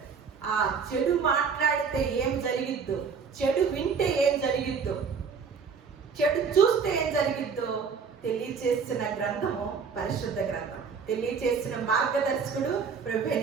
ఆ చెడు మాట్లాడితే ఏం జరిగిద్దో, చెడు వింటే ఏం జరిగిద్దో, చెడు చూస్తే ఏం జరిగిద్దో తెలియచేసిన గ్రంథము పరిశుద్ధ గ్రంథం. తెలియచేసిన మార్గదర్శకుడు ప్రభువైన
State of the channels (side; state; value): left; quieter; 5.8 dB